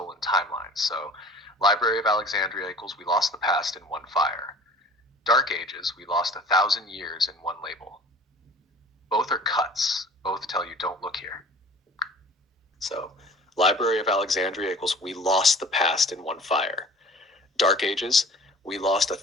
timelines. So Library of Alexandria equals we lost the past in one fire. Dark Ages, we lost 1,000 years in one label. Both are cuts. Both tell you don't look here. So, Library of Alexandria equals we lost the past in one fire. Dark Ages, we lost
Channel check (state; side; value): normal; both; correlation 0.45